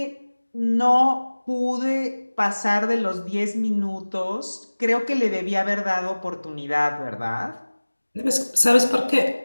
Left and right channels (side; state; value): both; inverted; correlation -1.00